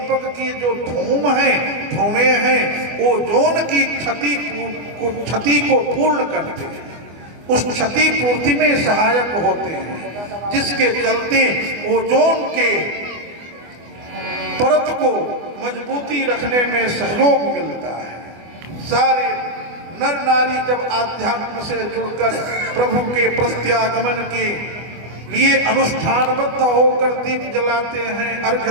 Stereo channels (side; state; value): left; late; 24 ms